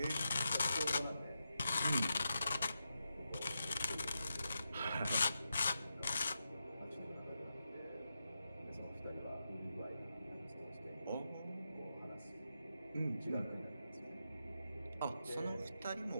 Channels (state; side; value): inverted; both; correlation -0.88